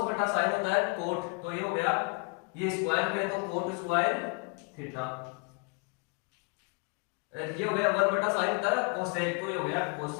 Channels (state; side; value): quieter; right; 33.0 dB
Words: बटा साइन होता है कोट। तो ये हो गया, ये स्क्वायर में तो कोट स्क्वायर थीटा। ये हो गया 1 बटा साइन होता है कोसेक। तो ये हो गया